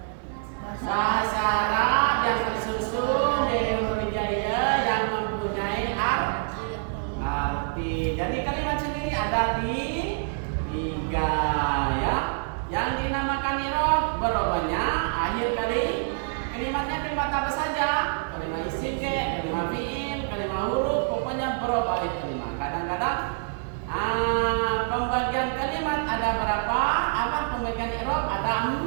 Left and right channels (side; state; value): left; silent; digital silence